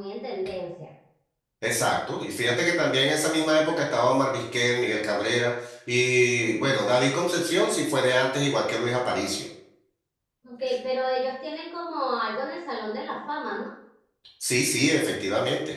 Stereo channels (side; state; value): both; identical; correlation 1.00